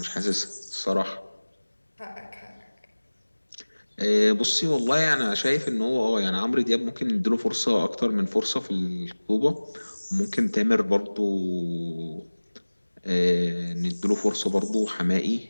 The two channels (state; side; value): inverted; both; correlation -1.00